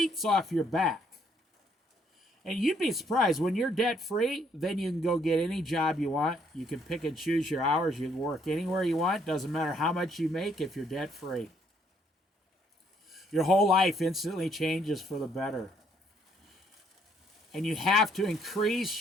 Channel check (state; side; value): normal; both; correlation 0.68